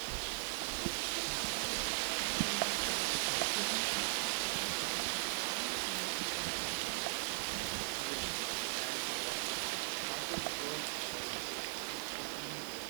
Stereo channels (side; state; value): left; silent; 52 dB below the other